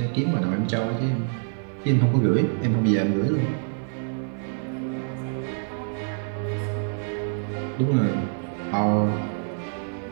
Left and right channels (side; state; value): left; silent; digital silence